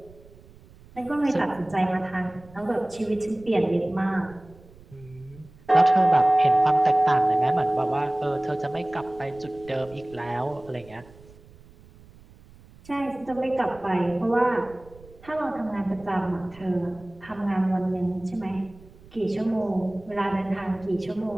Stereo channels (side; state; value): right; noise; rumble, 23 dB below the sound